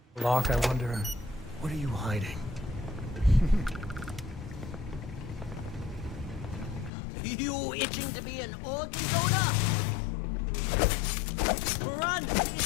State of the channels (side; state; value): right; drops out; at 6.9 s